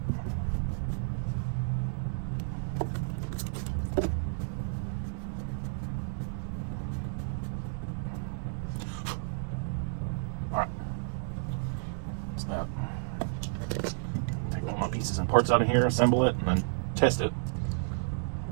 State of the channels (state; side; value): silent; left; digital silence